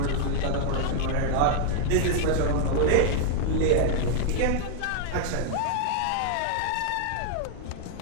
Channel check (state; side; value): different; both; correlation 0.00